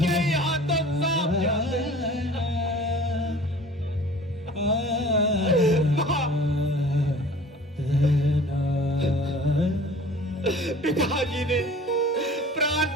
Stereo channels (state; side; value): normal; both; correlation 0.45